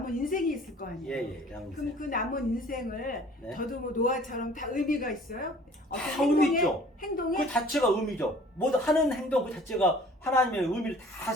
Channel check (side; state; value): both; normal; correlation 0.51